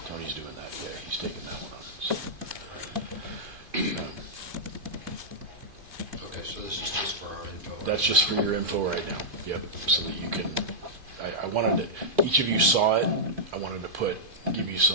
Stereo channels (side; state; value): left; late; 2.5 ms